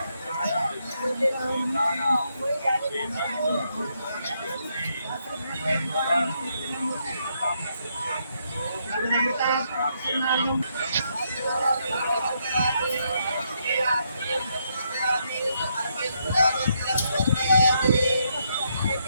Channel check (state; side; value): inverted; both; correlation -0.77